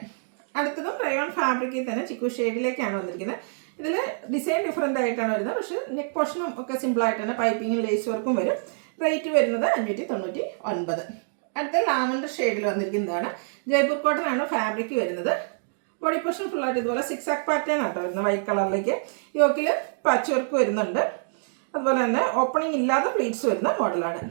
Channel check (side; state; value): left; silent; digital silence